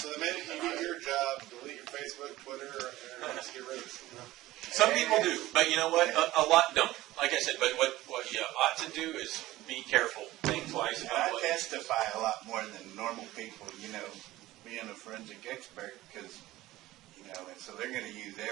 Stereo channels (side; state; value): left; quieter; 16.8 dB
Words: the minute you do your job, delete your Facebook, Twitter, or get rid of it. Some people do, but you know what? A lot don't. Like I said, but what you ought to do is be careful. Think twice about what. I testify a lot more than normal people, being a forensic expert, because, and so they're going to use